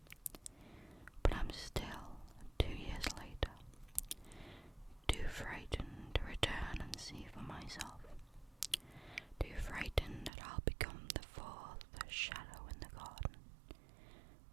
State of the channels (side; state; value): left; drops out; at 10.3 s